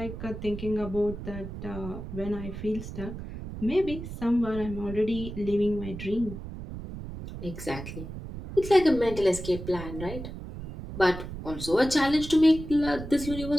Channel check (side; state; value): right; noise; rumble, 10 dB below the sound